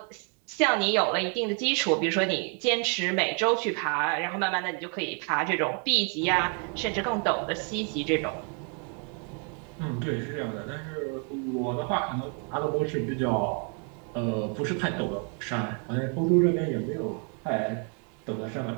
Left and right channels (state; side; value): quieter; left; 38.5 dB